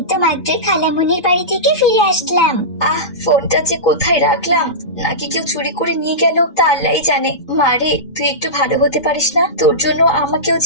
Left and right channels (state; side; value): late; right; 2.1 ms